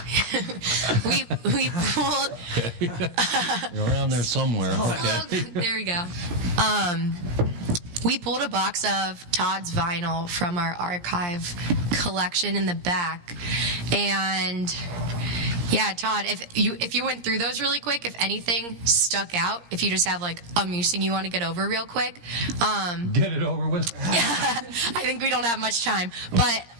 we pulled... You're around there somewhere. Okay. There we go. We pulled a box of Todd's vinyl from our archive collection in the back. And... yeah, Todd, if you went through those really quick, if anything stuck out, if you just have like a musing you want to get over real quick. Get it over with. I think we don't have much time. But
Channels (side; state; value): left; late; 17 ms